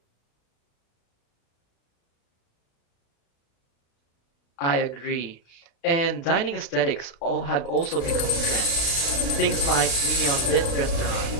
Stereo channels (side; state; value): right; late; 36 ms